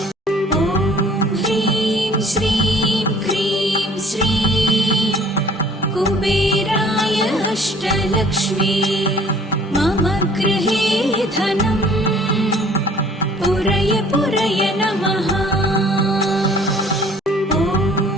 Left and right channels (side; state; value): both; normal; correlation 0.54